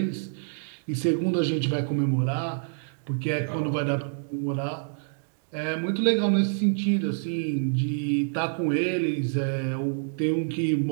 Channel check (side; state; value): left; silent; digital silence